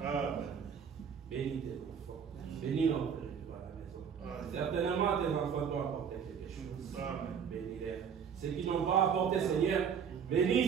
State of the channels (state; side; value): quieter; left; 7.3 dB